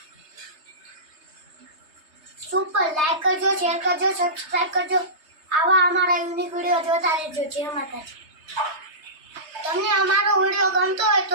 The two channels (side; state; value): left; late; 3.3 ms